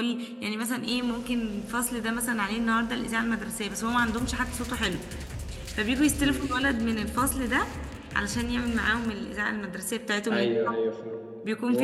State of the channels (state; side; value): identical; both; correlation 1.00